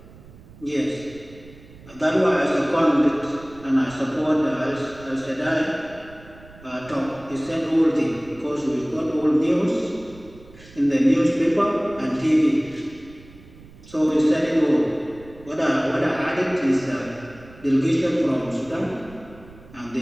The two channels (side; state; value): right; noise; rumble, 21 dB below the sound